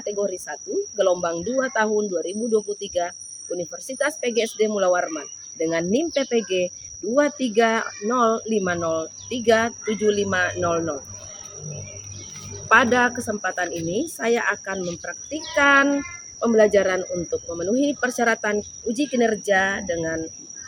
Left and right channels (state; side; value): identical; both; correlation 1.00